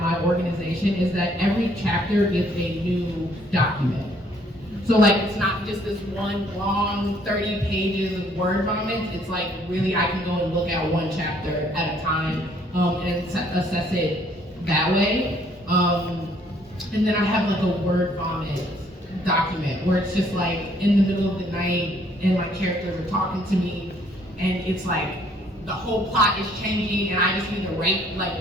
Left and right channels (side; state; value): both; normal; correlation 0.64